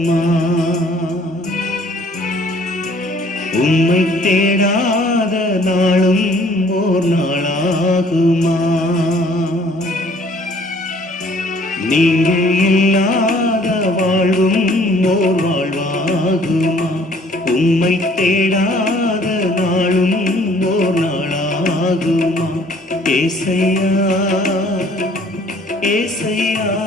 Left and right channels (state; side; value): normal; both; correlation 0.58